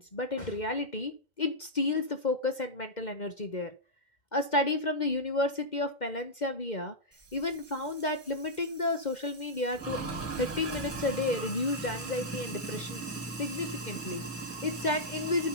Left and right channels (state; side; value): normal; both; correlation -0.09